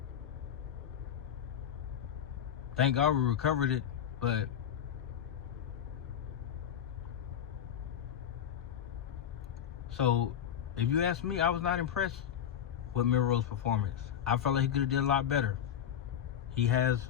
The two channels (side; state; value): right; quieter; 9.4 dB